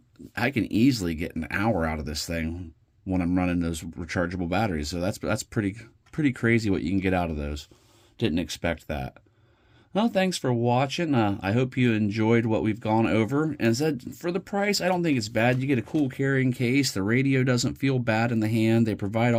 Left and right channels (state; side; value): identical; both; correlation 1.00